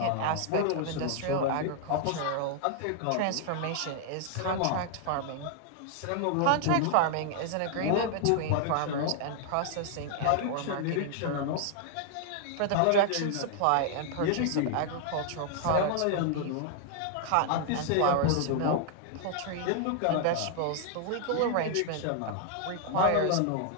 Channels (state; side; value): different; both; correlation 0.00